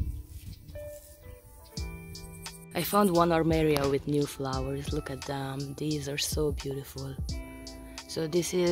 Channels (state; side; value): identical; both; correlation 1.00